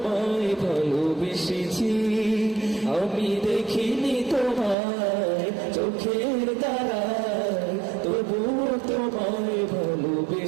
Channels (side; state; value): left; drops out; at 4.8 s